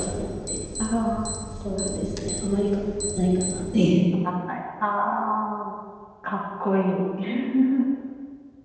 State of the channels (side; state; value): both; identical; correlation 1.00